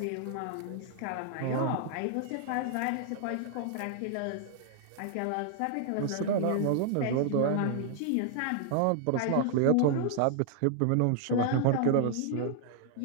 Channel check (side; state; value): both; different; correlation 0.00